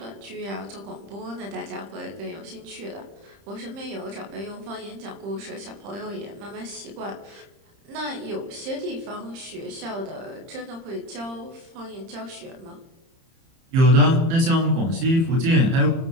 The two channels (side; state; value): left; late; 30 ms